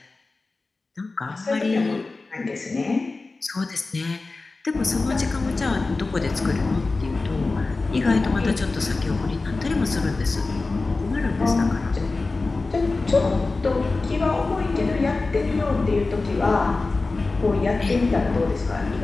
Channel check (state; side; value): quieter; right; 3.6 dB